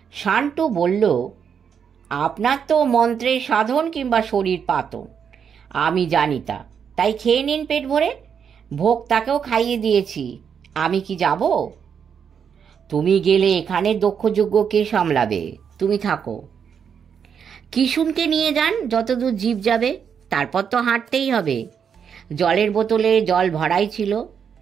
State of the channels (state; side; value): quieter; left; 7.3 dB